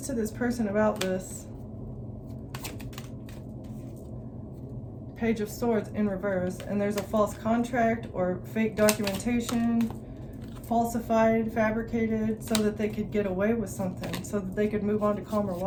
to this person about this. Page of Swords in reverse, and there's a false contract or fake documentation, falsified, fabricated, so that they could get away with something, so that they could move on to calmer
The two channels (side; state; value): both; identical; correlation 1.00